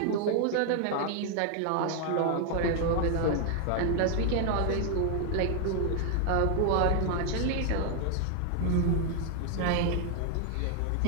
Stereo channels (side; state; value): both; different; correlation 0.00